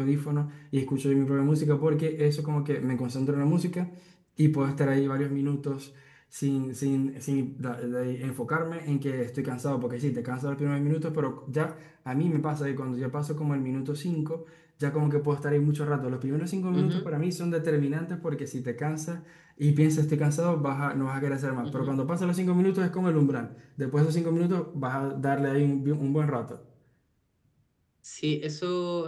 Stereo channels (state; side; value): identical; both; correlation 1.00